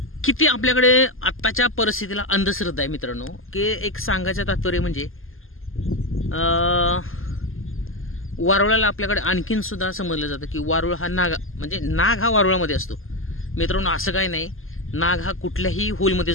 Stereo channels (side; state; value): right; late; 0.60 ms